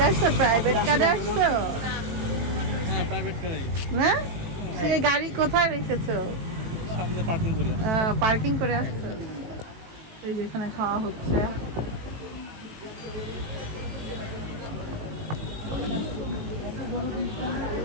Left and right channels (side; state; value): left; late; 18 ms